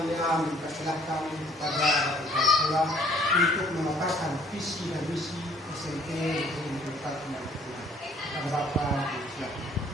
mempersilahkan kepada kepala sekolah untuk memaparkan visi dan misi SMP Negeri 54 Maluku Tengah. Kepada Bapak, silakan.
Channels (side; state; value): both; normal; correlation 0.60